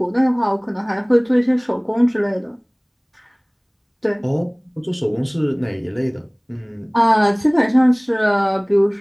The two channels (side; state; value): both; identical; correlation 1.00